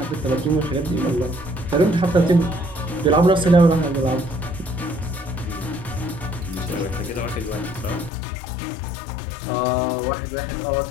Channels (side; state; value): right; drops out; at 8.1 s